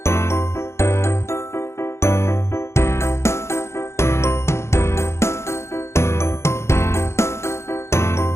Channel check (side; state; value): right; late; 0.13 ms